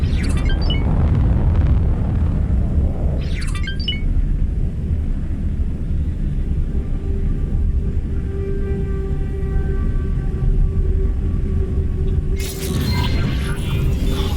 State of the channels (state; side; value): identical; both; correlation 1.00